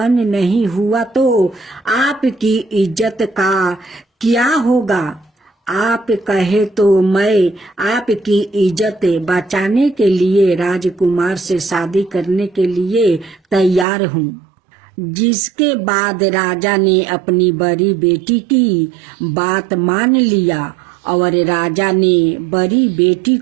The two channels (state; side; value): drops out; left; at 13.9 s